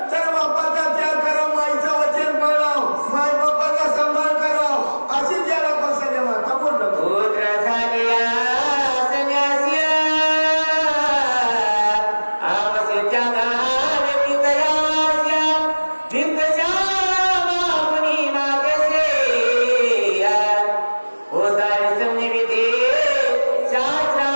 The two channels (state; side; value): inverted; both; correlation -1.00